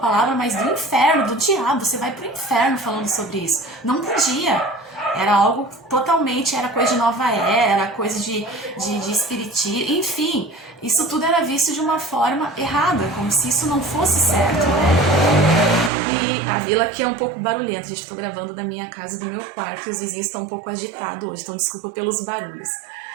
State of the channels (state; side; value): drops out; left; at 15.9 s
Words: mas do inferno, do diabo, você vai pro inferno falando sobre isso. Não podia. Era algo totalmente, era coisa de nova era, coisa de espiritismo, enfim, isso tudo era visto de uma forma errada, como se isso não fosse certo, né? E a vila aqui é um pouco barulhenta, gente, estou gravando da minha casa e do meu quarto, e os vizinhos estão um pouco agitados hoje, então desculpa pelos barulhos.